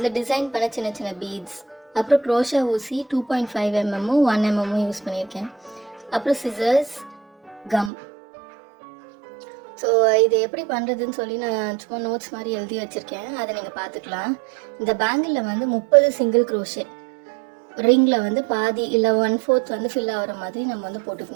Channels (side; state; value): left; drops out; at 7.9 s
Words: டிசைன் பண்ண சின்ன சின்ன பீட்ஸ், அப்புறம் க்ரோஷா ஊசி 2.5 mm 1 mm யூஸ் பண்ணியிருக்கேன். அப்புறம் சிசர்ஸ், கம். ஸோ இது எப்படி பண்ணுறதுன்னு சொல்லி நான் சும்மா நோட்ஸ் மாதிரி எழுதி வச்சுருக்கேன், அதை நீங்கள் பார்த்துக்கலாம். இந்த பேங்கிளில் வந்து 30 சிங்கிள் க்ரோஷே ரிங்கில் வந்து பாதி இல்லை 1/4 வந்து ஃபில் ஆகிற மாதிரி நம்ம வந்து